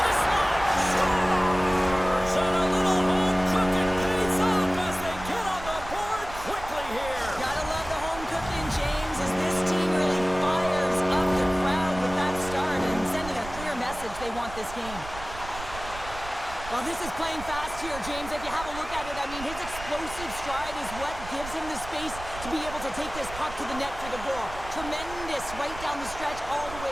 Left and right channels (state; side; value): noise; right; rumble, 13 dB below the sound